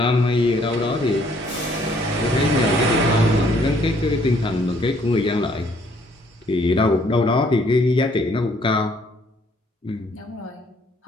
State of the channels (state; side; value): normal; both; correlation 0.64